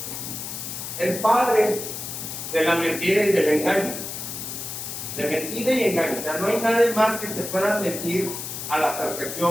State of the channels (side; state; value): left; noise; hiss, 7 dB below the sound